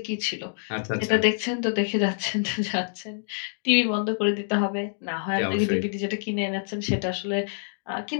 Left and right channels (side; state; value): right; silent; digital silence